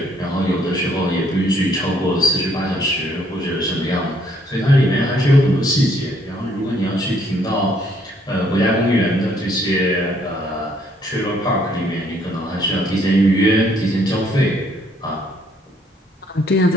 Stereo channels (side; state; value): both; normal; correlation 0.66